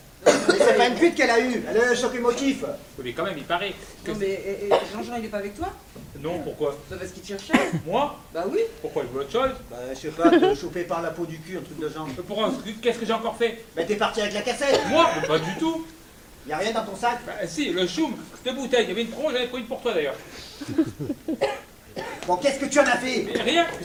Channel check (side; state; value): both; identical; correlation 1.00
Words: Mais c'est pas une cuite qu'elle a eue. Elle a eu un choc émotif. Oui, mais quand même, il paraît que... Non, mais Jean-Jean, il est pas avec toi? Non, pourquoi? Bah, parce qu'il te cherchait. Moi? Bah oui. Pourquoi? Il veut autre chose? Bah, je sais pas, te choper par la peau du cul, un truc de genre. Pourquoi? Qu'est-ce que j'ai encore fait? Mais t'es parti avec la cassette. Moi? Mais pas du tout. Y a rien dans ton sac. Bah, si, le choum, cette bouteille, il y avait une promo, j'en ai pris une pour toi d'ailleurs. Bon, qu'est-ce que tu en as fait? Mais rien,